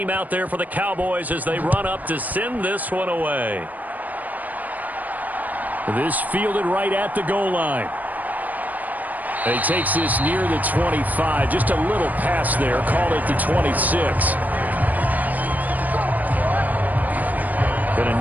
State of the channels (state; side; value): late; left; 0.080 ms